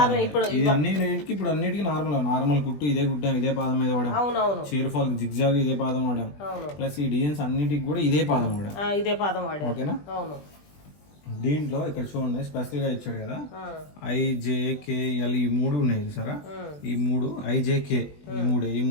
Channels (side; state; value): right; late; 20 ms